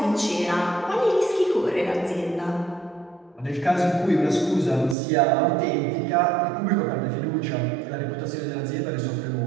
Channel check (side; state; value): left; drops out; at 5.0 s